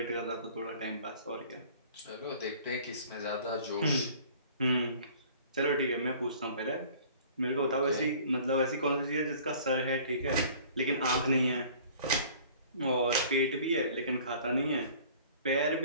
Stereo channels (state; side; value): inverted; both; correlation -0.50